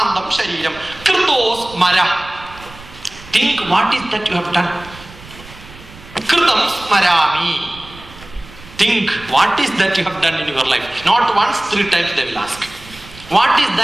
shariram kritos mara. Think what is that you have done. Kritam smarami. Think what is that you have done in your life. Not once, 3 times they will ask. What is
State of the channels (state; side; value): noise; right; rumble, 19 dB below the sound